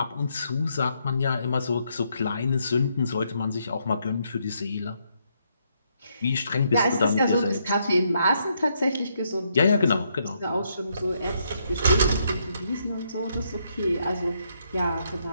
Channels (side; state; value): both; inverted; correlation -0.75